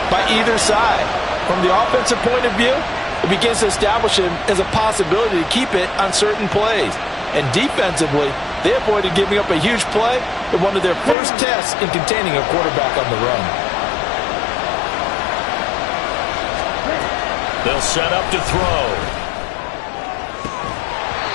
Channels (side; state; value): right; drops out; at 11.2 s